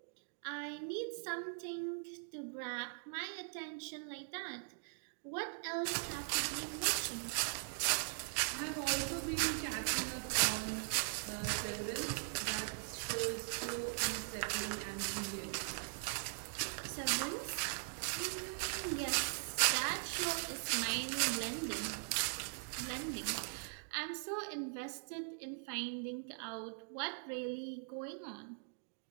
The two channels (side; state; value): left; silent; digital silence